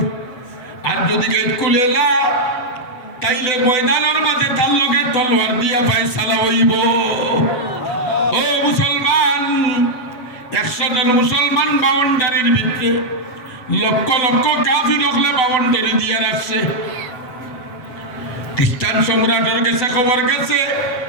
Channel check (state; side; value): late; right; 8.0 ms